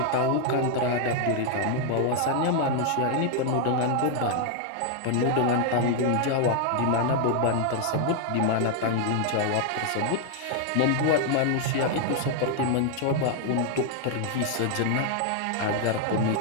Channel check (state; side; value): different; both; correlation 0.00